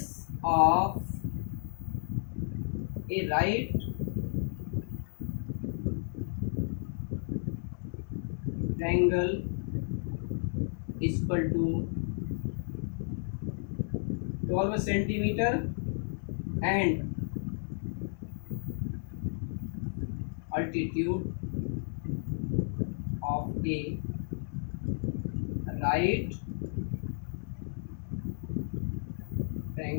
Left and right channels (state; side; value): silent; right; 56 dB below the other